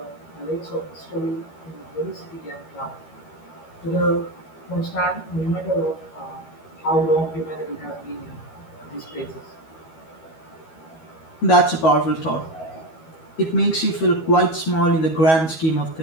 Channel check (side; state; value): right; late; 12 ms